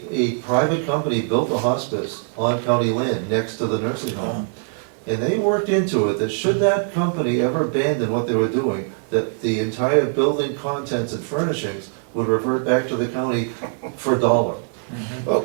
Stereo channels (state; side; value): silent; left; 60 dB below the other